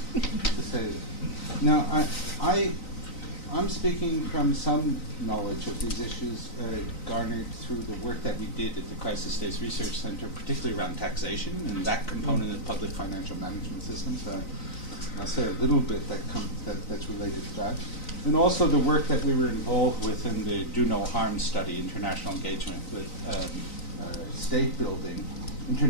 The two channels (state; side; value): late; right; 3.9 ms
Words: say. Now, I'm speaking from some knowledge of these issues garnered through the work that we did at the Crisis States Research Center, particularly around taxation and that component of public financial management systems. I'll say a little bit that's related to that. And also the work that we were involved with in the Do No Harm study, international engagement with state building,